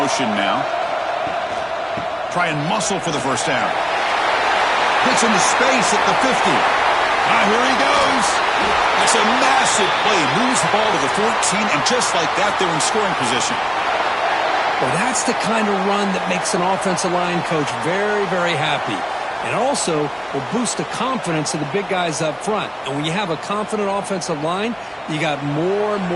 now. Try and muscle for the first down. Hits into space at the 50. Here he goes. That's a massive play. Moves the ball to the 14, and just like that, they're in scoring position. Well, that's the kind of run that makes an offensive line coach very, very happy. And also will boost the confidence of the big guys up front. And when you have a confident offensive line, you got more and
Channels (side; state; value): both; identical; correlation 1.00